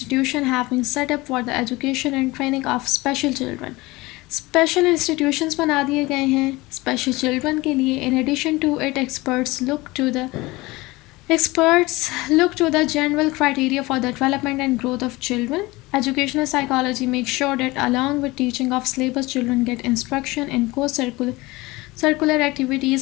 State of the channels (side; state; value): right; quieter; 21.4 dB